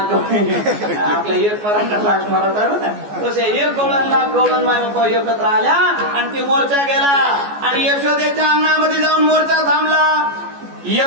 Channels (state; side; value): late; left; 14 ms